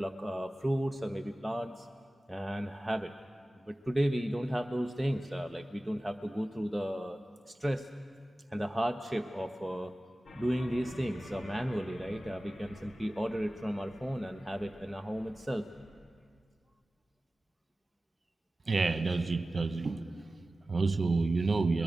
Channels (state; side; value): normal; both; correlation 0.96